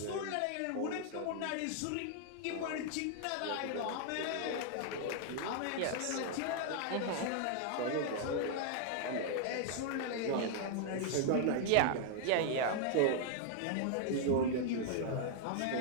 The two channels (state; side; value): different; both; correlation 0.00